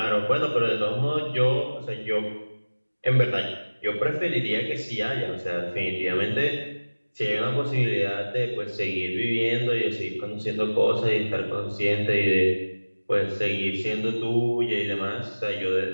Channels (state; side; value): inverted; both; correlation -1.00